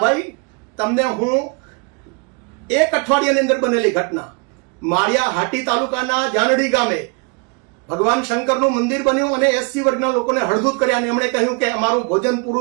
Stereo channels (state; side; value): quieter; left; 30.9 dB